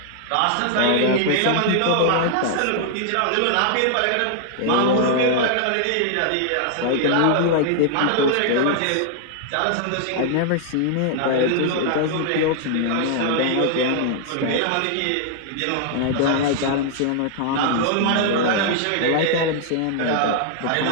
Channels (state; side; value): different; both; correlation 0.00